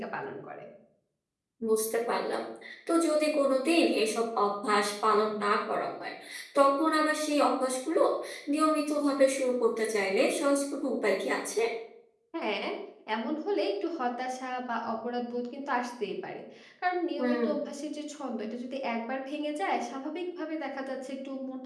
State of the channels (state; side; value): identical; both; correlation 1.00